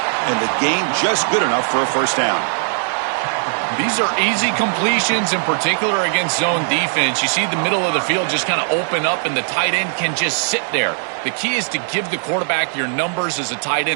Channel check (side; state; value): left; silent; 67 dB below the other